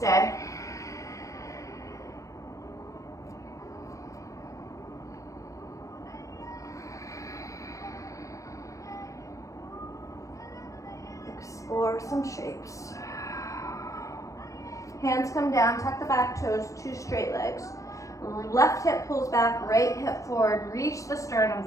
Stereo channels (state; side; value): late; right; 0.16 ms